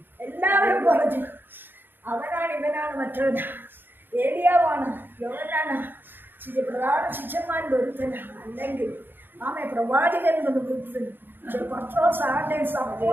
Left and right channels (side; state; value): left; late; 0.098 ms